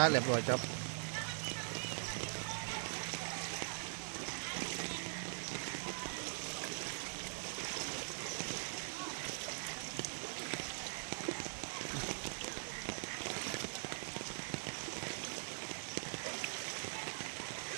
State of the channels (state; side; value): silent; left; digital silence